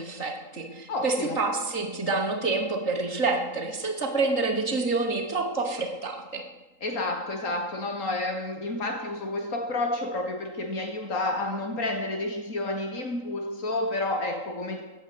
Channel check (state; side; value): late; right; 3.8 ms